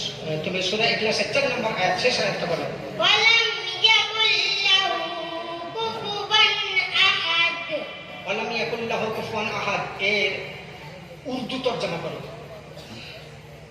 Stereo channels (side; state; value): both; identical; correlation 1.00